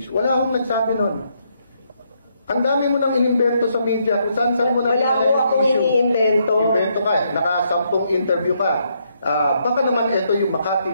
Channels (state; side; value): inverted; both; correlation -0.75